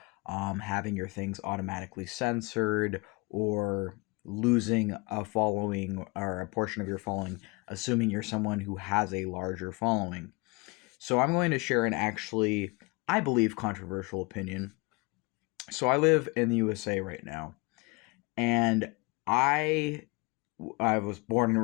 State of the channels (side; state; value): right; quieter; 27.4 dB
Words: having your things automatically censored, or losing a following or a portion of your following, assuming you're someone who has a larger following. So I'm going to share an actually, I believe, controversial opinion. So I live in the USA right now, and I I was born and